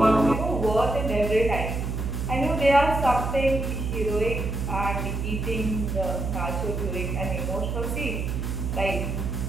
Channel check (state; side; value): noise; right; hum, 2 dB below the sound